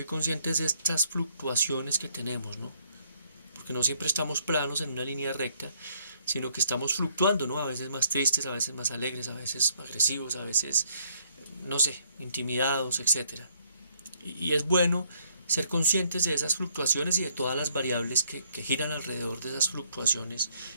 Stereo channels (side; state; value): both; inverted; correlation -0.67